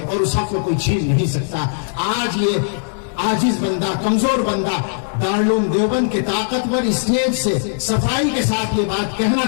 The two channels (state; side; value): silent; right; 61 dB below the other